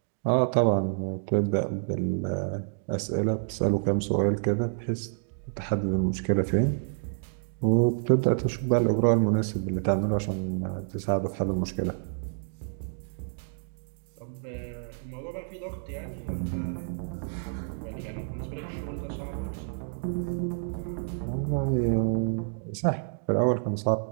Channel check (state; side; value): silent; left; digital silence